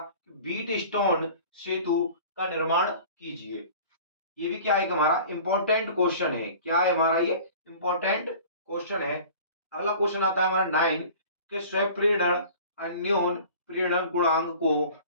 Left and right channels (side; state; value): both; inverted; correlation -0.43